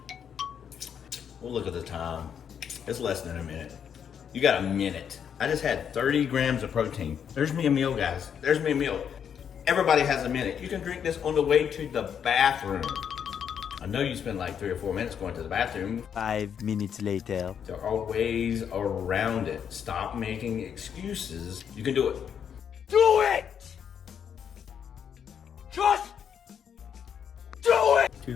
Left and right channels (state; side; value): quieter; right; 8.0 dB